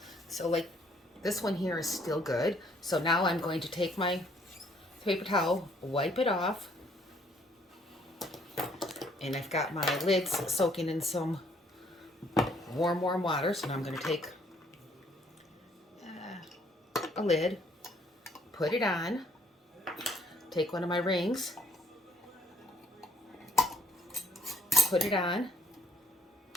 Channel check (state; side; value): normal; both; correlation 0.64